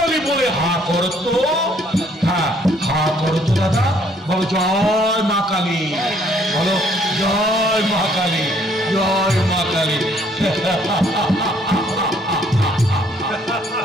বলে হা করো তো। হ্যাঁ, হা করো তো দাদা, বলো জয় মা কালী, বলো জয় মা কালী, জয় মা কালী।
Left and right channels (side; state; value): both; normal; correlation 0.64